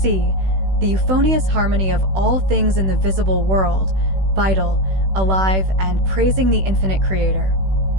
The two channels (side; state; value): left; late; 16 ms